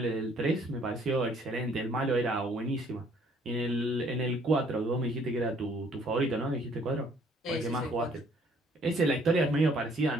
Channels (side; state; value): both; normal; correlation 0.61